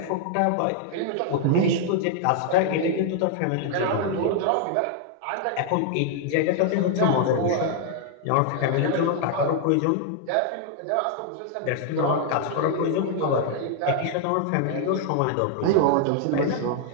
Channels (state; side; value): different; both; correlation 0.00